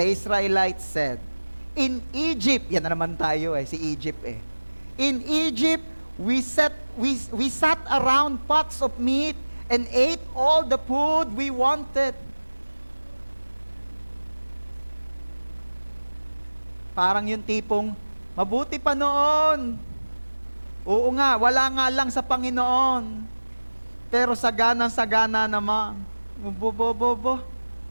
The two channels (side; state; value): both; inverted; correlation -1.00